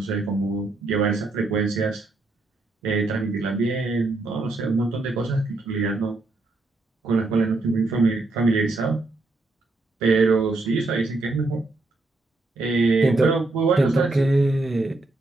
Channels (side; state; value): left; quieter; 3.1 dB